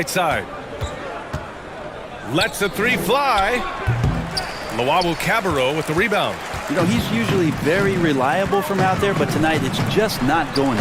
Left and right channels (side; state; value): both; identical; correlation 1.00